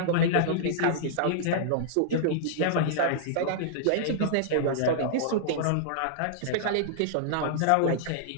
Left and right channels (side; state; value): both; different; correlation -0.02